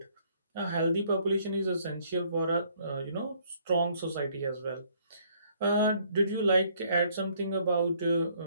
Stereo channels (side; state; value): both; inverted; correlation -0.64